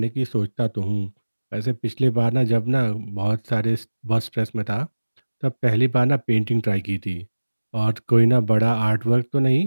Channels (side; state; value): both; inverted; correlation -1.00